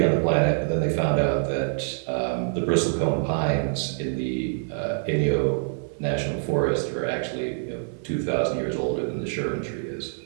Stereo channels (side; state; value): left; silent; 56 dB below the other